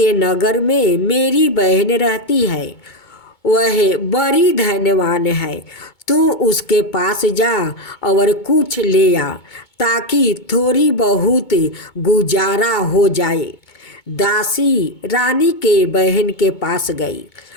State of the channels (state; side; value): late; right; 2.2 ms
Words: नगर में मेरी बहन रहती है। वह बड़ी धनवान है। तू उसके पास जा और कुछ ले आ ताकि थोड़ी बहुत गुजारा हो जाए। दासी रानी के बहन के पास गई।